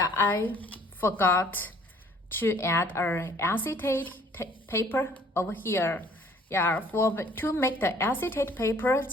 I forgot to add an acetate paper over here. Yeah, to make the acetate paper,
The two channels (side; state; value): both; normal; correlation 0.57